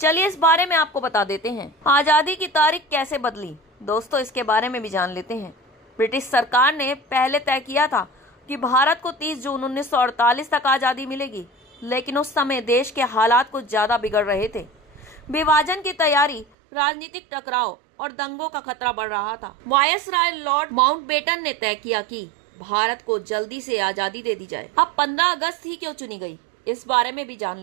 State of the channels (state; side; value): drops out; left; at 16.4 s